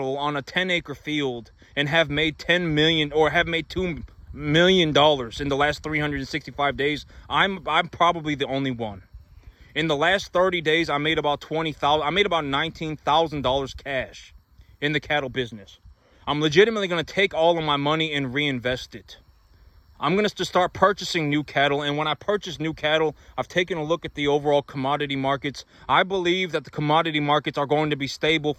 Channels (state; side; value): identical; both; correlation 1.00